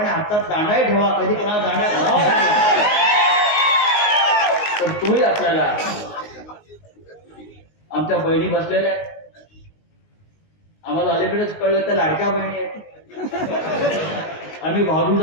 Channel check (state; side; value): late; right; 19 ms